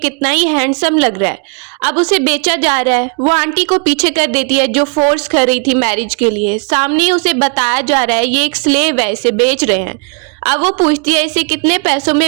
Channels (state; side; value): quieter; left; 35.8 dB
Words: ही हैंडसम लग रहा है। अब उसे बेचा जा रहा है। वो आंटी को पीछे कर देती है जो फोर्स कर रही थी मैरिज के लिए। सामने उसे बताया जा रहा है ये एक स्लेव है, इसे बेच रहे हैं। अब वो पूछती है इसे कितने पैसों